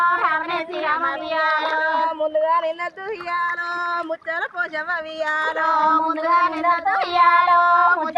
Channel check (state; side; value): identical; both; correlation 1.00